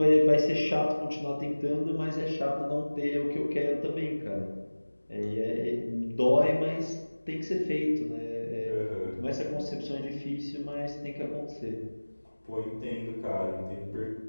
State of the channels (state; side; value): inverted; both; correlation -1.00